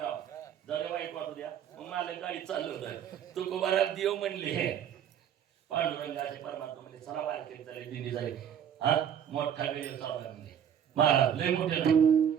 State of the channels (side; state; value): left; quieter; 9.0 dB